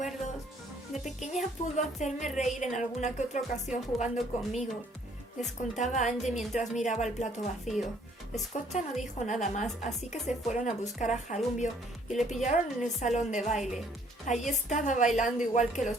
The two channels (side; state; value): both; normal; correlation 0.63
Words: De pequeña pudo hacerme reír en alguna que otra ocasión jugando conmigo. Les contaba Angie mientras miraba el plato vacío. Scotta no dijo nada más, así que se fueron a buscar a Jarumbio y le pillaron en el salón de baile. Allí estaba bailando igual que